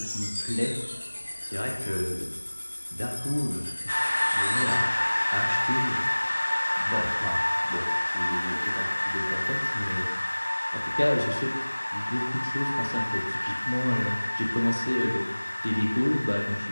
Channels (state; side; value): inverted; both; correlation -1.00